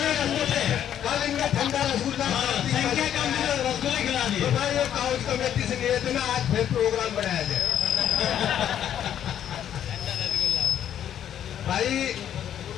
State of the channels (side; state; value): right; quieter; 10.1 dB